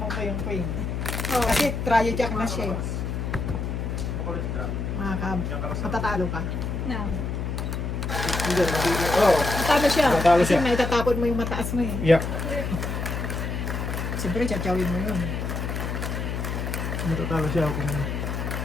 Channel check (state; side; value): noise; left; hum, 3 dB below the sound